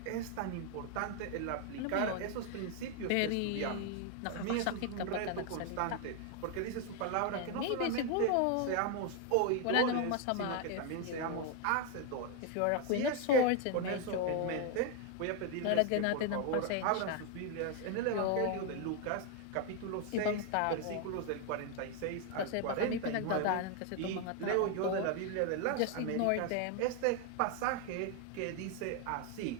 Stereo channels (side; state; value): both; different; correlation 0.01